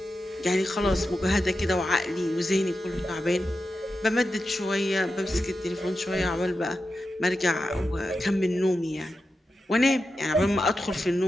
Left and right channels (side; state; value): both; normal; correlation 0.90